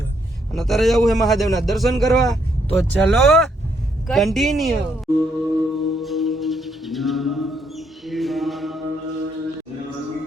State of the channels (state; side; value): normal; both; correlation 0.73